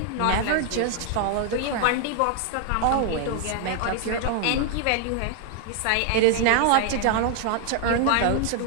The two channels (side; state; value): both; different; correlation 0.00